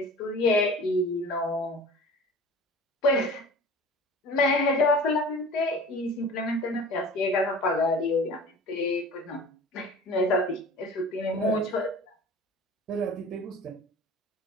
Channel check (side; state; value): both; normal; correlation 0.40